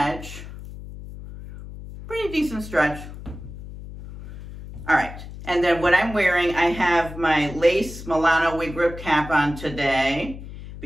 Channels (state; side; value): noise; left; hum, 13 dB below the sound